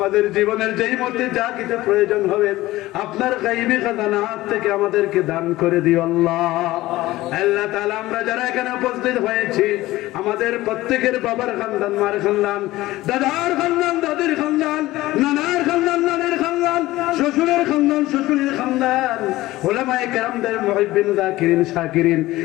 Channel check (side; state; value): right; quieter; 17.4 dB